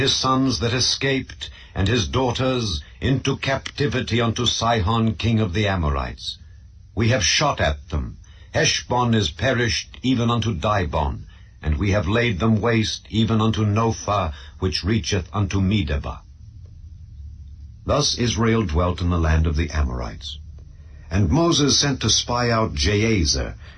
sons that escaped, and his daughters, into captivity unto Sihon king of the Amorites. We have shot at them. Heshbon is perished even unto Dibon, and we have laid them waste even unto Nophah, which reacheth unto Medeba. Thus Israel dwelt in the land of the Amorites. And Moses sent to spy out Jahazer,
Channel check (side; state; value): both; identical; correlation 1.00